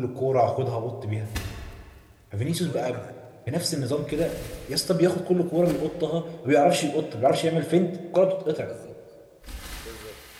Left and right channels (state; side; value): identical; both; correlation 1.00